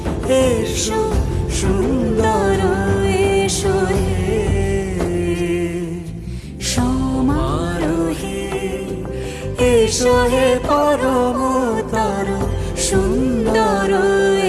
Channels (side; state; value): both; identical; correlation 1.00